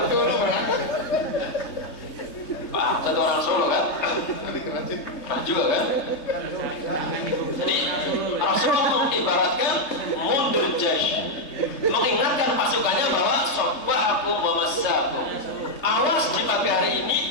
Pak Harto orang Solo kan? Pernah juga kan? Jadi Rasulullah mengibaratkan mundur jaish, mengingatkan pasukannya bahwa sabbahakum wa masa'akum. Awas di pagi hari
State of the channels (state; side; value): late; right; 3.2 ms